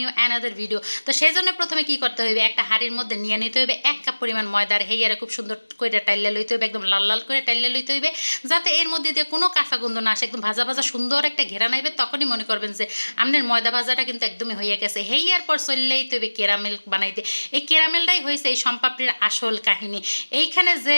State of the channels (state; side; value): inverted; both; correlation -1.00